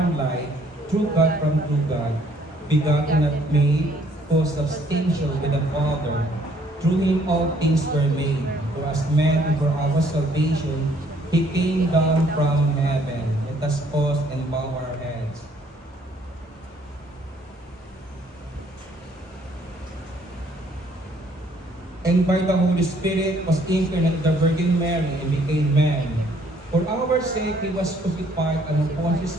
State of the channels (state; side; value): normal; both; correlation 0.63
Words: light, true God from true God, begotten not made, co-substantial with the Father. Through Him all things were made. For as man and for our salvation, He came down from heaven. Let us pause and bow our heads. And by the Holy Spirit was incarnate the Virgin Mary and became man. For our sake He was crucified under Pontius